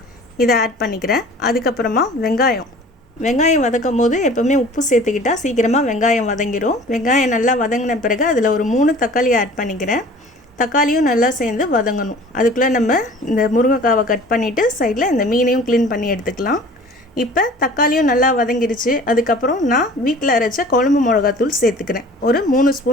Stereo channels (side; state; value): both; normal; correlation 0.45